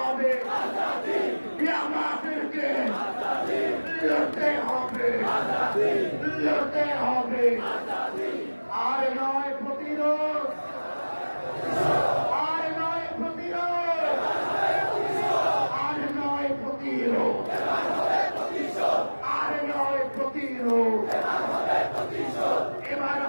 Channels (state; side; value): inverted; both; correlation -1.00